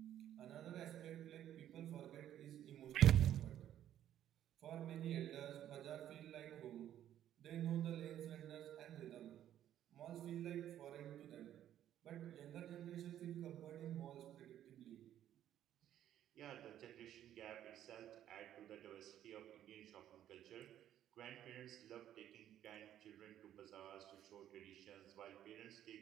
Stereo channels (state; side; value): quieter; left; 11.3 dB